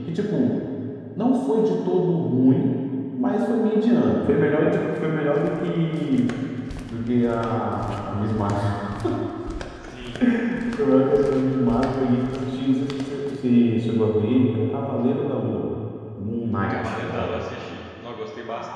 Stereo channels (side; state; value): both; identical; correlation 1.00